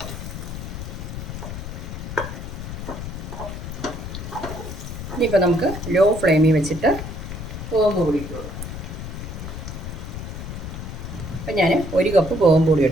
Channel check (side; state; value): left; noise; rumble, 8 dB below the sound